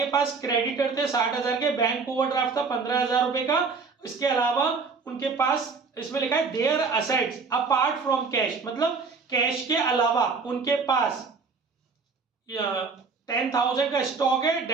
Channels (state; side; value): quieter; left; 4.8 dB